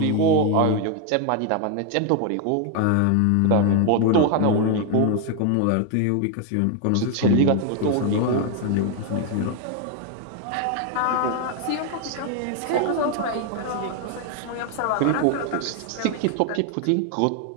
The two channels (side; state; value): both; different; correlation 0.00